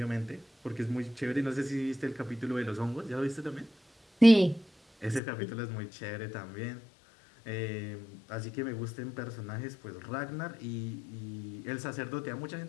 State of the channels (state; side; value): drops out; right; at 5.2 s